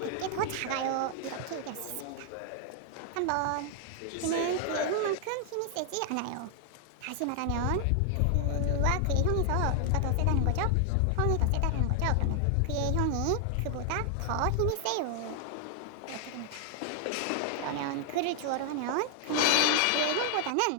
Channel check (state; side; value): different; both; correlation 0.00